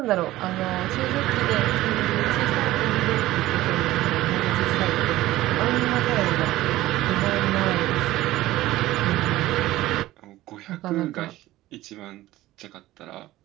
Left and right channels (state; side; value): quieter; left; 16.3 dB